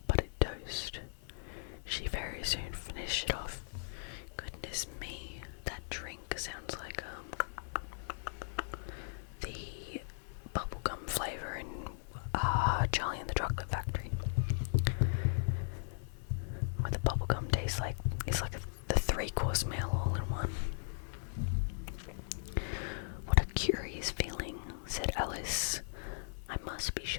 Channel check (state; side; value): silent; right; 53 dB below the other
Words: buttered toast. She very soon finished it off. Goodness me, that drink sounds like the bubblegum flavour in Charlie and the Chocolate Factory. Where the bubblegum tastes like, it's like the 3-course meal all in one. What a curious feeling, said Alice. I must be